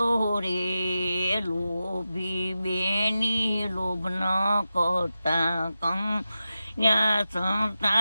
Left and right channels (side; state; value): both; inverted; correlation -0.92